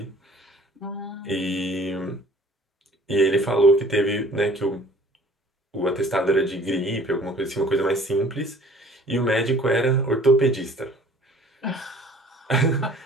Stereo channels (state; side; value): normal; both; correlation 0.51